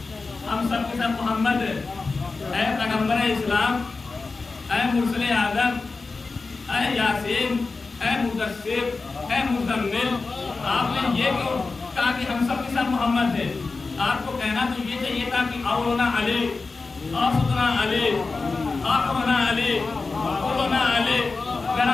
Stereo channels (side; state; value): right; quieter; 4.0 dB